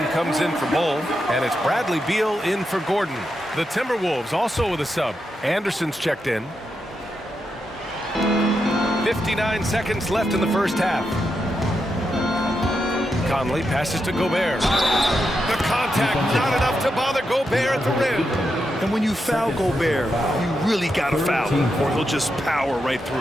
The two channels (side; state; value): both; normal; correlation 0.85